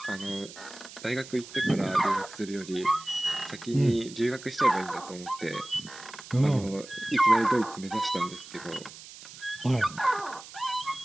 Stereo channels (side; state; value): right; noise; hiss, 16 dB below the sound